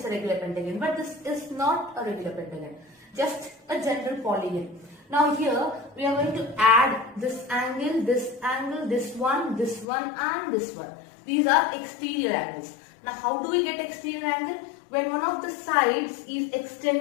a regular pentagon. But this is not a regular pentagon, just a general polygon. Now here we are going to add this angle, this one, and this one. These are exterior angles. Now how do we get exterior angle? When one of the sides is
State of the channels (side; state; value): right; drops out; at 9.9 s